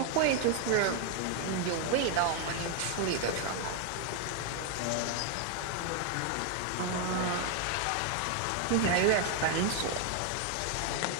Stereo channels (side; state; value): both; different; correlation 0.01